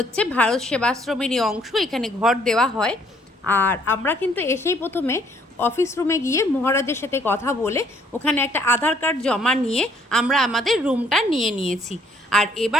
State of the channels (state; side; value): normal; both; correlation 0.64